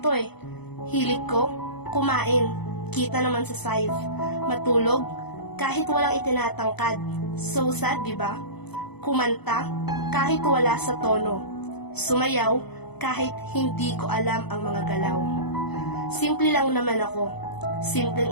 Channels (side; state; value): right; late; 0.98 ms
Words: eh. Hilig ko, kumain, kita naman sa size, matulog, kahit walang itinatangkad. So sad, diba? Kumanta, kahit wala sa tono. Sumayaw, kahit hindi ko alam ang mga galaw. Simple lang naman ako.